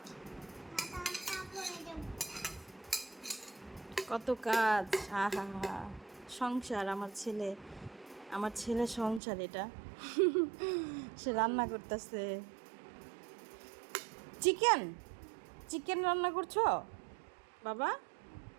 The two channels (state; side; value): drops out; left; at 9.2 s